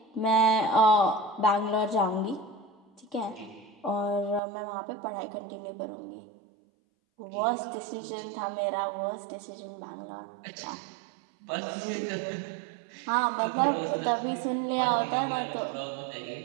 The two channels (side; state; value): left; drops out; at 4.4 s